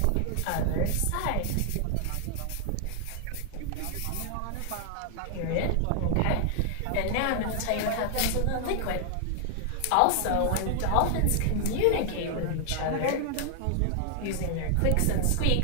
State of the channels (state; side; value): different; both; correlation 0.00